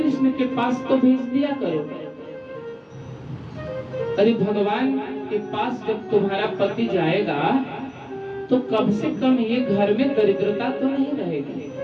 के पास तो भेज दिया करो। अरे भगवान के पास जब तुम्हारा पति जाएगा तो कम से कम ये घर में दरिद्रता तो नहीं रहेगी।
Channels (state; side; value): identical; both; correlation 1.00